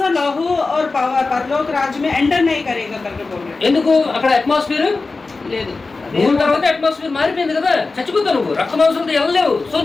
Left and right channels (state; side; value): quieter; right; 3.8 dB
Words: और लहू और परलोक राज्य में एंटर नहीं करेगा करके बोल रहे। ఎందుకు? అక్కడ అట్మాస్ఫియర్ లేదు, మూడు తర్వాత అట్మాస్ఫియర్ మారిపోయింది కదా, చచ్చిపోతావు నువ్వు. రక్త మాంసంతో వెళ్ళలేవు. సో